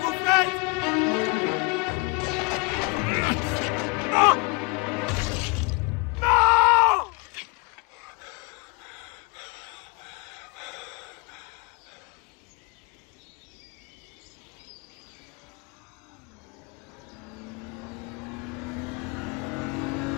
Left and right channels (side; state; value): right; quieter; 28.6 dB